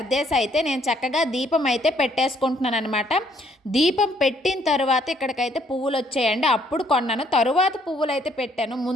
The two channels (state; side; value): normal; both; correlation 0.66